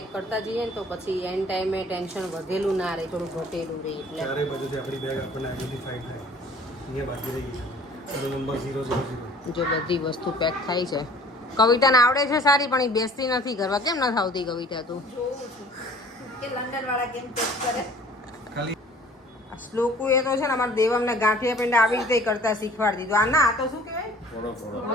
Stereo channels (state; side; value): normal; both; correlation 0.51